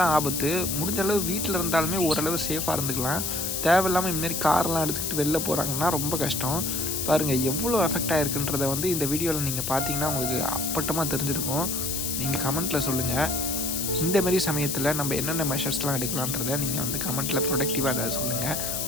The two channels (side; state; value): left; noise; hiss, 2 dB below the sound